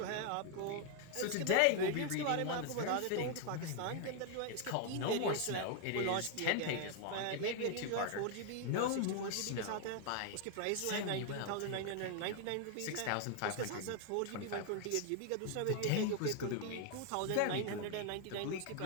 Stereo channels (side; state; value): both; different; correlation 0.00